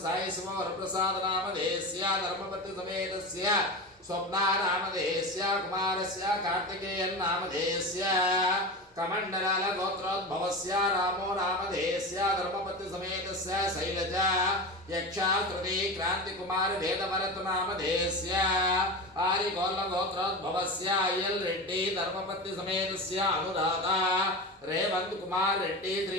సాయి సుమవరప్రసాద నామధేయస్య ధర్మపతి సమేతస్య స్వప్నా నామధేయస్య కుమారస్య కార్తికేయన్ నామధేయస్య కమండలాల గోత్రోద్భవస్య రామో నామధేయస్య ధర్మపతి సమేతస్య శైలజ యక్షాశ్రుతి క్రాంతి కుమార వేదభరత నామధేయస్య ఆరిగోల్ల గోత్రోద్భవస్య అయ్యల్ రెడ్డి ధర్మపతి సమేతస్య అనురాధ రేవంత్ కుమార్ రెడ్డి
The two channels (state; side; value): normal; both; correlation 0.25